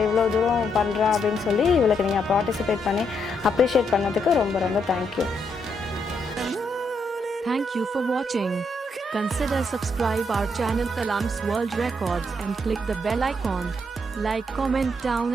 இவ்வளோ தூரம் பண்ணுறா அப்படின்னு சொல்லி இவளுக்கு நீங்கள் பார்ட்டிசிபேட் பண்ணி அப்ரிஷியேட் பண்ணதுக்கு ரொம்ப ரொம்ப thank you. Thank you for watching. Consider subscribe our channel Kalam's World Records and click the bell icon. Like, comment down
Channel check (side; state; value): both; normal; correlation 0.77